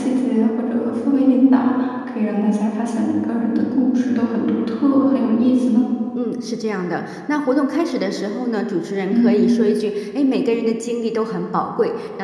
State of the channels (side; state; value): both; identical; correlation 1.00